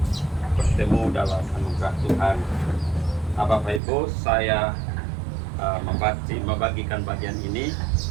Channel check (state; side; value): drops out; left; at 3.8 s